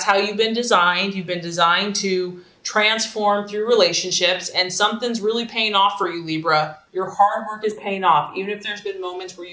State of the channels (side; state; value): both; identical; correlation 1.00